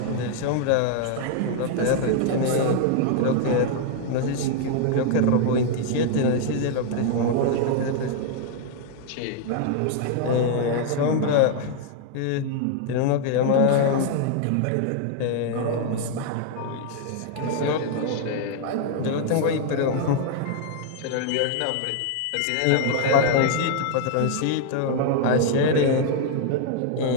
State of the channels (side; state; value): both; different; correlation 0.00